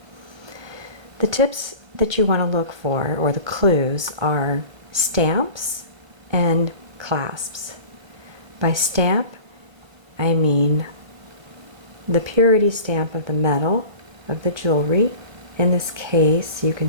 The tips that you want to look for, or the clues, are stamps and clasps. By stamp, I mean the purity stamp of the metal of the jewelry. In this case, you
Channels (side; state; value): left; late; 1.3 ms